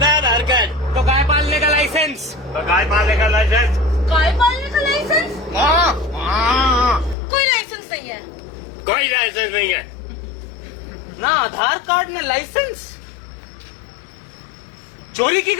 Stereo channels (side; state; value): right; drops out; at 7.2 s